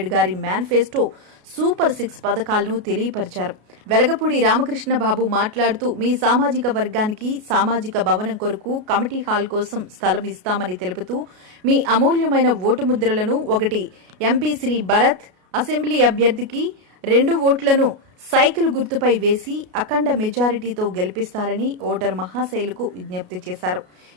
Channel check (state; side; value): late; left; 33 ms